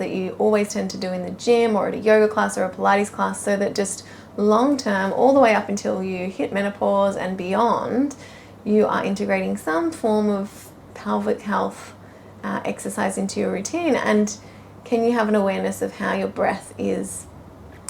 you always tend to do in the gym or at a yoga class or a Pilates class, so that just long term, all the way up until you hit menopause and beyond, you are integrating some form of pelvic health exercise into your routine? And can you have an awareness of how your breath is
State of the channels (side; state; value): both; identical; correlation 1.00